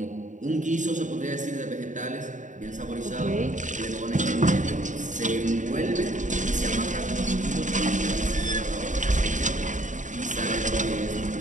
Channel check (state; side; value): late; left; 0.36 ms